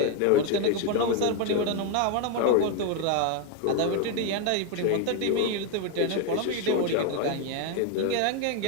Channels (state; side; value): different; both; correlation 0.01